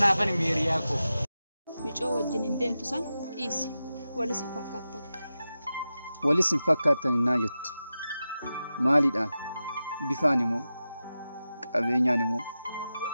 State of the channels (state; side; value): inverted; both; correlation -0.92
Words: meeriyaa koo. Micoo wajjin hin deemtu san dhiisi. Walis hin fakkaattan. Walis hin fakkaattan innaa jettu. Maaliidhaan? Bifaan immoo qabeenyaan immoo